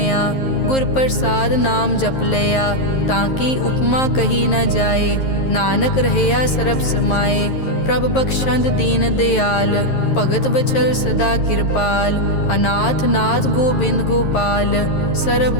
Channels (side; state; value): right; late; 11 ms